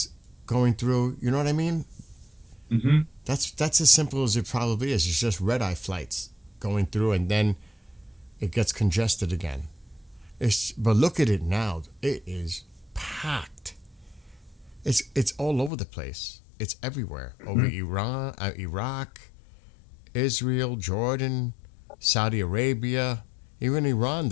going through. You know what I mean? Mm-hmm. That's as simple as it probably is. It's just red eye flights going through, and then it gets congested again. But look at it now. It is packed. It's all over the place. It's everywhere. Over Iran, Iraq, Israel, Jordan, Saudi Arabia, even Iran.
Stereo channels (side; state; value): right; drops out; at 15.7 s